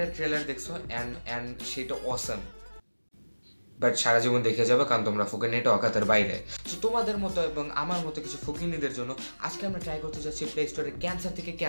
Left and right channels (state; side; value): inverted; both; correlation -1.00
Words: ট্রেলার দেখছো অ্যান্ড সেটা অসাম, বাট সারা জীবন দেখে যাবে, কারণ তোমরা ফুকিনিটা অকাতের বাইরে। সো তোমাদের মতো এবং আমার মতো কিছু ফুকিনিদের জন্য আজকে আমরা ট্রাই করতে যাচ্ছি প্লে স্টোরে ক্যান্সার থেকে